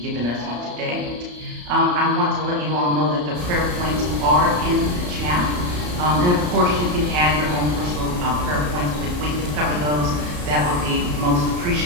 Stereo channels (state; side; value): late; left; 34 ms